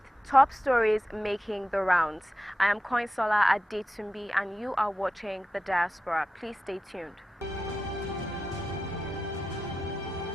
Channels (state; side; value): normal; both; correlation 0.92